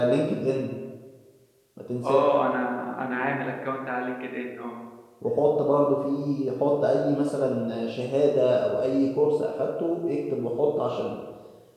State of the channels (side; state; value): both; identical; correlation 1.00